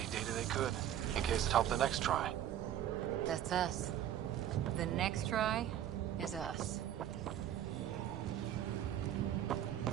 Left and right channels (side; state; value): left; quieter; 11.1 dB